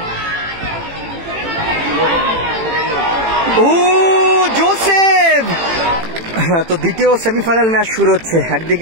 ও জোসেফ। তো দ্বিতীয় সেমিফাইনাল ম্যাচ শুরু হচ্ছে,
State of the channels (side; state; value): left; late; 18 ms